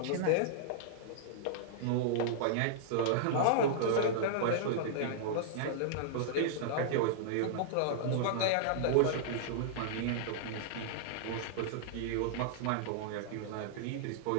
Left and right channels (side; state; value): both; different; correlation -0.01